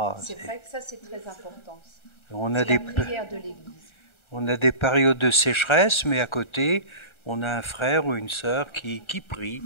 c'est vrai que ça c'est très important. On a la prière de l'Église. On a des périodes de sécheresse, mais à côté, on a un frère ou une sœur qui prie.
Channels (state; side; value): late; right; 1.4 ms